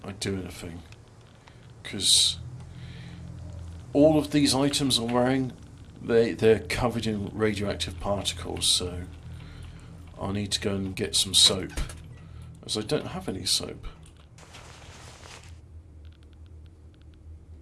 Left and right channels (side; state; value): both; identical; correlation 1.00